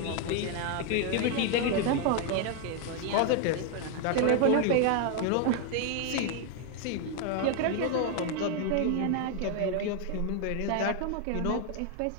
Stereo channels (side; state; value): both; different; correlation 0.01